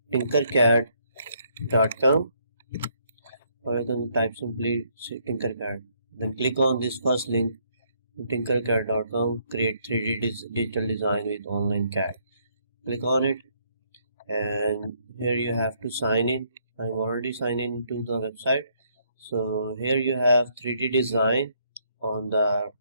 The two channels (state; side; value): inverted; both; correlation -0.70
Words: tinkercad.com, or you can type simply tinkercad. Then click on this first link, tinkercad.com, create 3D digital design with online CAD. Click on it, and here you have to sign in. I'm already signed in to the website. So here you have 3D design on the